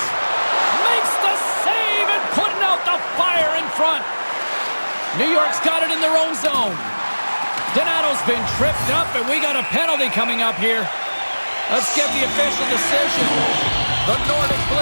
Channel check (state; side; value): inverted; both; correlation -1.00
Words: Makes the save and putting out the fire in front. New York's got it in their own zone. Donato's been tripped up, and we got a penalty coming up here. Let's get the official decision. The Nordic